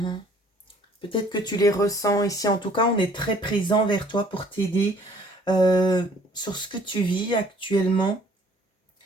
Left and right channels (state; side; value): normal; both; correlation 0.57